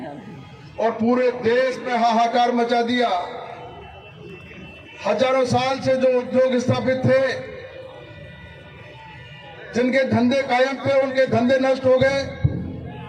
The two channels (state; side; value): identical; both; correlation 1.00